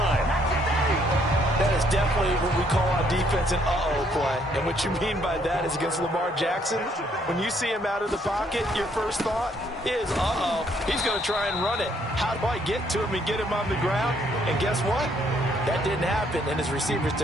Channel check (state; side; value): normal; both; correlation 0.68